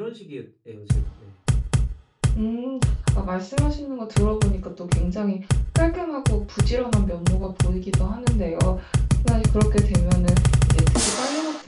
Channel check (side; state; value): both; identical; correlation 1.00